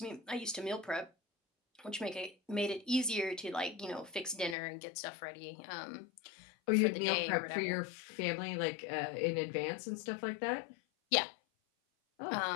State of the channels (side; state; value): right; drops out; at 4.5 s